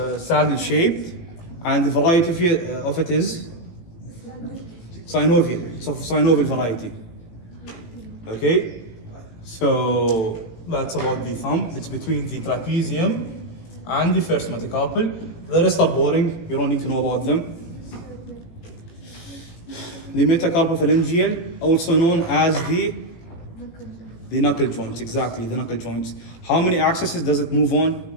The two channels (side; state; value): right; late; 18 ms